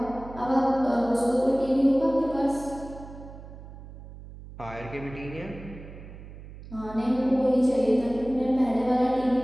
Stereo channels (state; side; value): noise; right; hum, 15 dB below the sound